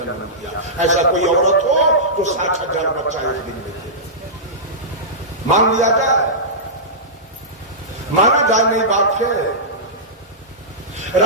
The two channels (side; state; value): both; normal; correlation -0.16